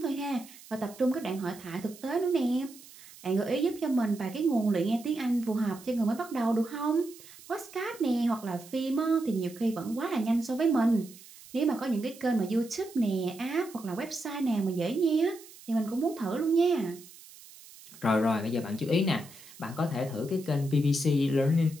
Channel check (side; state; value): right; noise; hiss, 20 dB below the sound